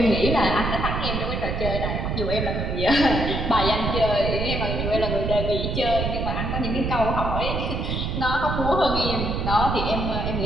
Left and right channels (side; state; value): right; noise; rumble, 2 dB below the sound